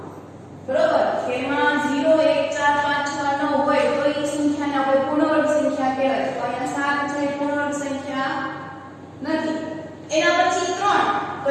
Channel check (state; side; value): identical; both; correlation 1.00